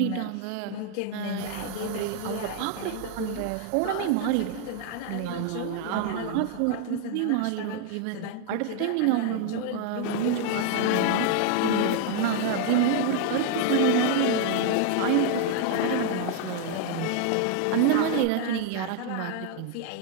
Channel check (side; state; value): both; different; correlation 0.00